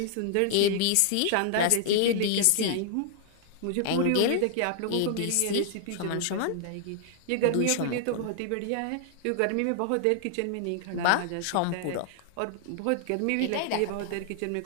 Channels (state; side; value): different; both; correlation 0.00